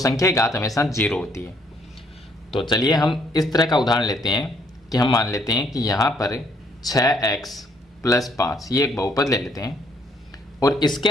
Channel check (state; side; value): normal; both; correlation 0.67